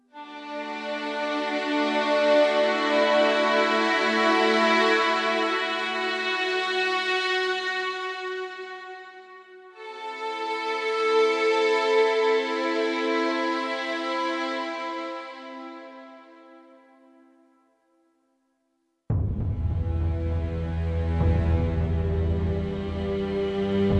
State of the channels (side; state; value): both; identical; correlation 1.00